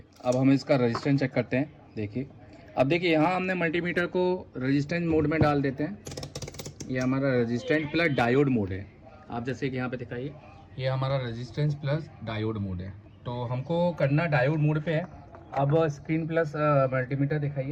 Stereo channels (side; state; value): both; identical; correlation 1.00